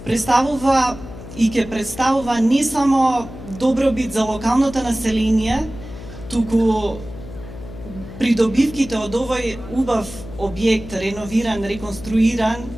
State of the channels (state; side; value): noise; left; hum, 14 dB below the sound